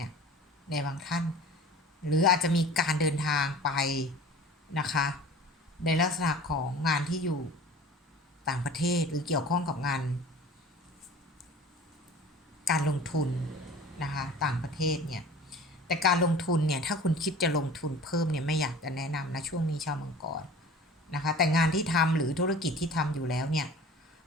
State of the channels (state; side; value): normal; both; correlation 0.42